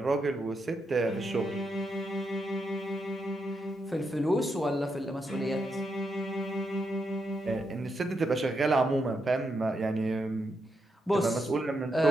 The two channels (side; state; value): both; normal; correlation 0.82